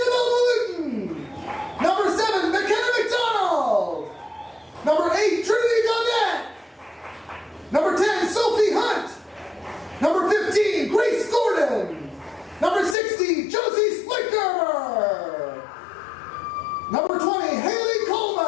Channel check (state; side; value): drops out; right; at 13.0 s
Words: Malutin. Number 7, McKenna McDonald. Number 8, Trinity Gaudette. Number 10, Sophie Hunt. Number 15, Grace Gordon. Number 60, Josie Splicker. Number 20, Haley